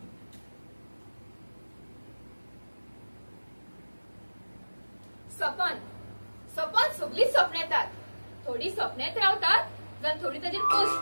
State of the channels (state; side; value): inverted; both; correlation -1.00